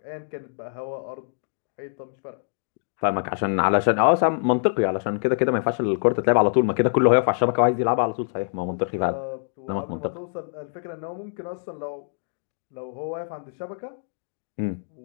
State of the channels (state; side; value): silent; right; digital silence